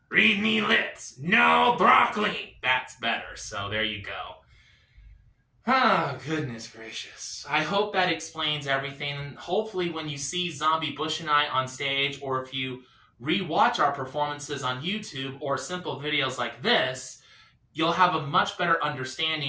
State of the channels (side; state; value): both; identical; correlation 1.00